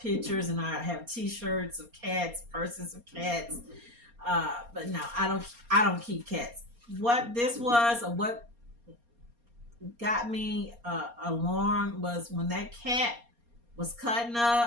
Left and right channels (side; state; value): left; late; 4.3 ms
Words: and I have T-shirts of cats, purses of cats. But no, I don't keep cats. What this was, or what got me alarmed, was when that cat was cutting